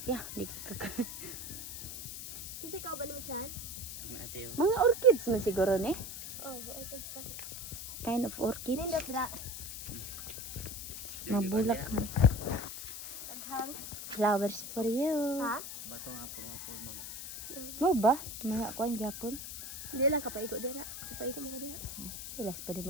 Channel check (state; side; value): noise; left; hiss, 8 dB below the sound